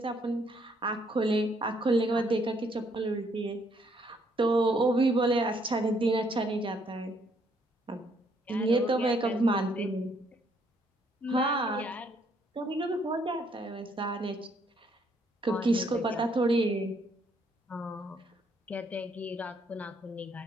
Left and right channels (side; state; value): both; normal; correlation 0.69